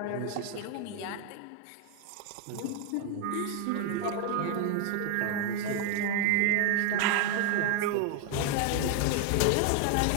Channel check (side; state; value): both; different; correlation 0.00